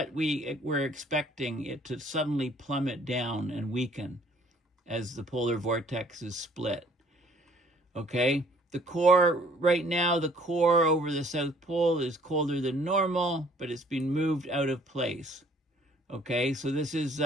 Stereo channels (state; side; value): normal; both; correlation 0.59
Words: we're expecting it to suddenly plummet down and weaken as the polar vortex is split. Okay, the core right now, the core over the South Pole is colder than normal, but it's been moved out of place. Okay, so this is